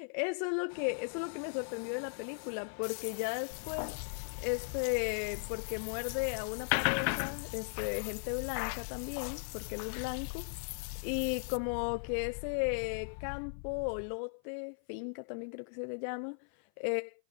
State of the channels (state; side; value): silent; right; 53 dB below the other